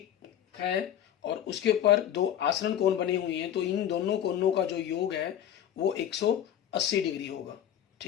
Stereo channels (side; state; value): right; quieter; 10.3 dB